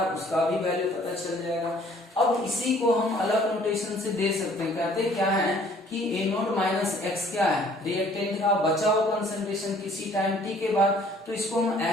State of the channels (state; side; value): normal; both; correlation 0.57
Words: उसका भी वैल्यू पता चल जाएगा। अब इसी को हम अलग नोटेशन से दे सकते हैं, कहते क्या है कि A0 माइनस x क्या है, रिएक्टेंट का बचा हुआ कंसंट्रेशन किसी टाइम t के बाद, तो इसको हम